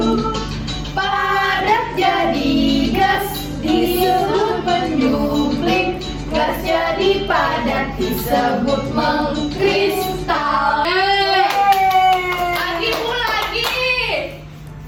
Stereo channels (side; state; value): both; identical; correlation 1.00